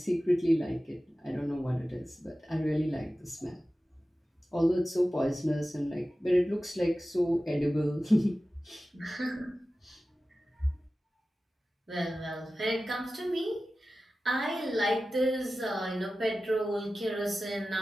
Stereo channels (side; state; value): both; normal; correlation 0.95